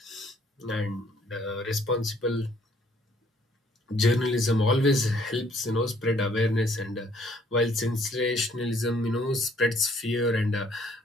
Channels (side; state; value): both; normal; correlation 0.63